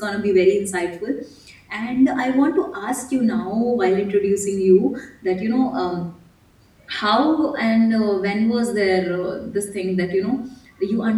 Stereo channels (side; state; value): both; identical; correlation 1.00